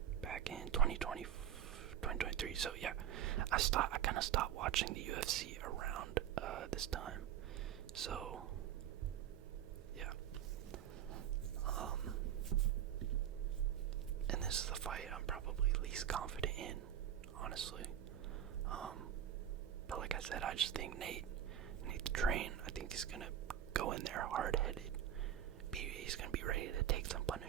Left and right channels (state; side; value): quieter; left; 10.4 dB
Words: Back in 2023. So yeah, I kind of stopped watching the UFC around this time. So yeah, and this is the fight I'm probably least confident in, honestly. But like I said, I just think Nate the Train, I think he's gonna go in there hard-headed. He's gonna be ready to take some